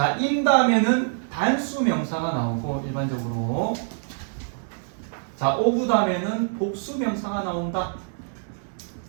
in 다음에는 단수 명사가 나오고 일반적으로 자 of 다음에는 복수 명사가 나온다.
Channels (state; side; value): silent; left; digital silence